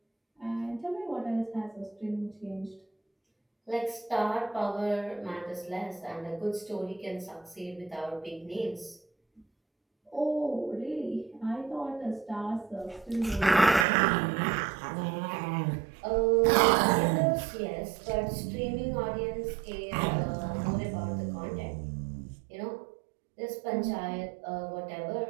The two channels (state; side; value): drops out; left; at 13.9 s